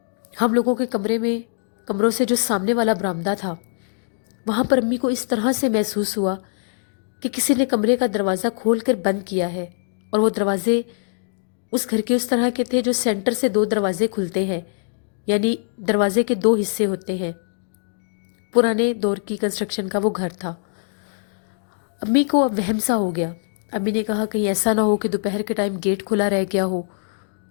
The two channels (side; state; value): right; silent; digital silence